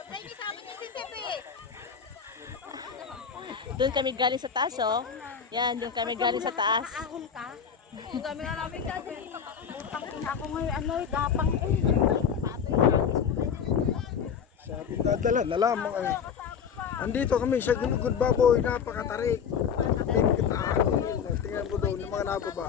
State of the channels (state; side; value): quieter; right; 7.1 dB